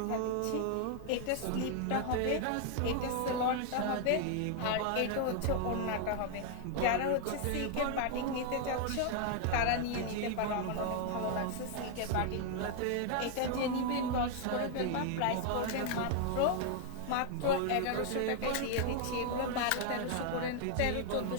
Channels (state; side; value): different; both; correlation 0.00